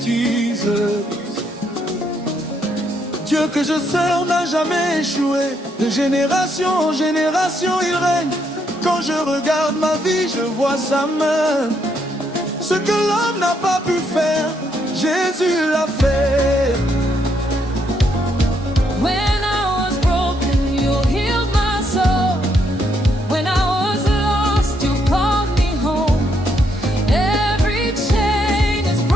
Jesus. Dieu que je sers n'a jamais échoué. De génération en génération il règne. Quand je regarde ma vie, je vois sa main. Ce que l'homme n'a pas pu faire, Jésus l'a fait. When I was broken, you healed my soul. When I was lost, you called me home. Every chain is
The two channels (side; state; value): both; normal; correlation 0.75